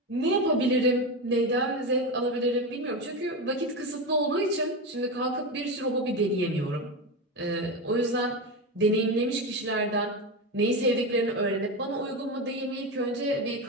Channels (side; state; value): both; normal; correlation 0.17